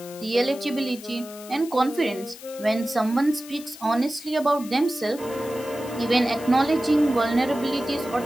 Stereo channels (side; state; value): left; noise; hiss, 17 dB below the sound